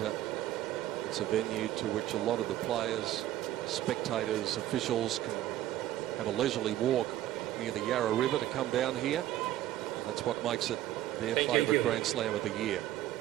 It's a venue to which a lot of the players, spectators, officials can have a leisurely walk near the Yarra River to come down here. And that's what makes it their favourite Grand Slam of the year.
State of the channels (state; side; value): quieter; left; 13.6 dB